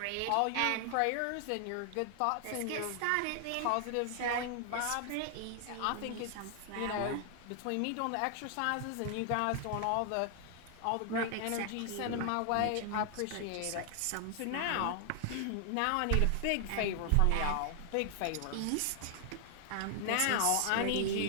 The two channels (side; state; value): both; different; correlation 0.00